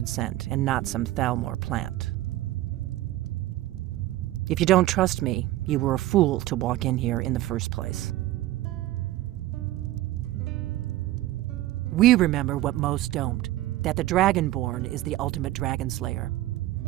sent, and not some Thalmor plant. If you don't trust me, you were a fool to walk in here in the first place. We remember what most don't, that the Dragonborn is the ultimate dragon slayer.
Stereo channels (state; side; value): quieter; left; 15.7 dB